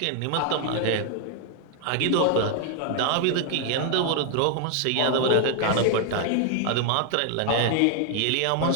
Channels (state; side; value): different; both; correlation 0.00